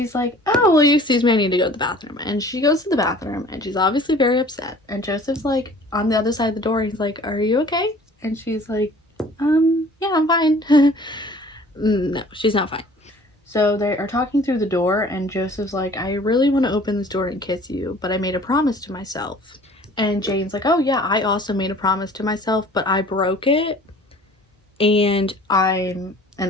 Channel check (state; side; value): normal; both; correlation 0.49